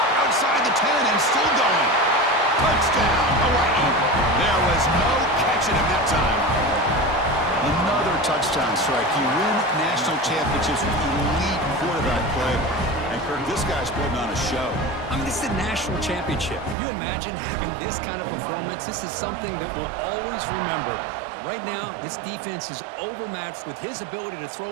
outside the 10 and still going. Touchdown, Hawaii. There was no catching him that time. Another touchdown strike. You win national championships with elite quarterback play. And Kirk, this guy's putting on a show. I mean, this is a national championship. You imagine having this kind of performance? This is something that we'll always remember. Right now, this defense is overmatched with his ability to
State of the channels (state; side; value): drops out; left; at 16.8 s